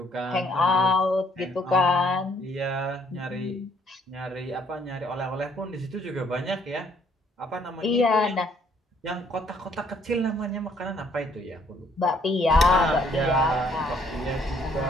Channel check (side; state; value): both; normal; correlation 0.64